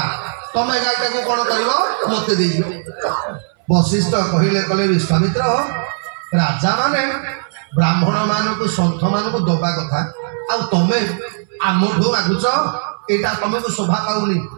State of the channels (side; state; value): left; silent; 63 dB below the other